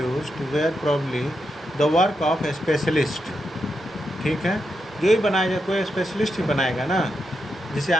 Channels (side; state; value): both; normal; correlation 0.84